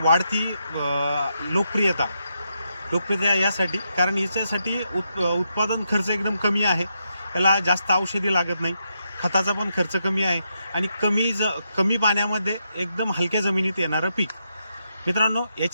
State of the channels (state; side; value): inverted; both; correlation -0.82